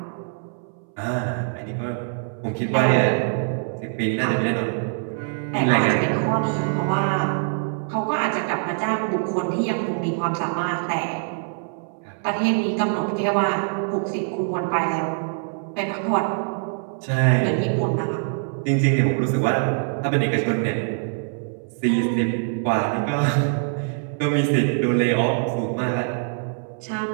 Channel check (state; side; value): silent; left; 63 dB below the other